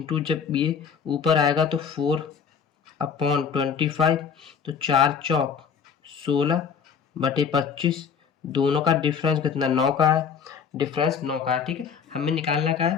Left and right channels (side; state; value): right; quieter; 6.7 dB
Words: जब ये ऊपर आएगा तो 4/25, तो 4 चौक 16/25, दोनों का डिफरेंस कितना 9 का है, डिफरेंस 9 का है। ठीक है, हमें निकालना का